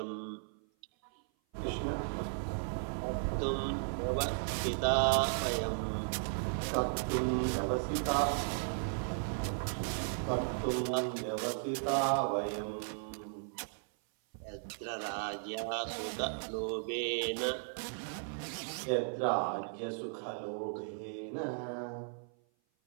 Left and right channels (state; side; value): silent; left; 54 dB below the other